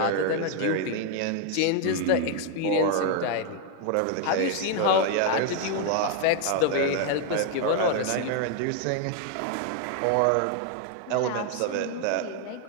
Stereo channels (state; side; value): different; both; correlation 0.00